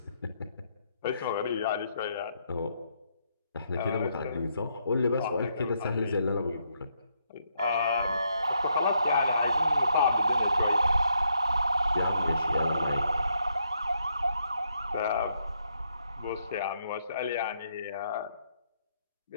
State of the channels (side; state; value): both; inverted; correlation -0.76